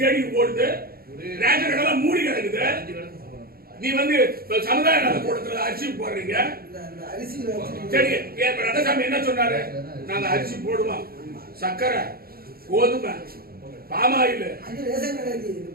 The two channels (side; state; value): left; late; 0.44 ms